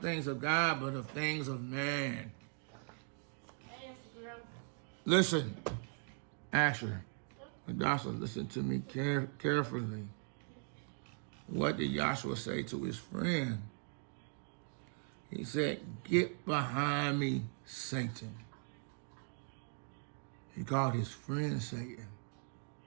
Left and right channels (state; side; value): silent; left; 51 dB below the other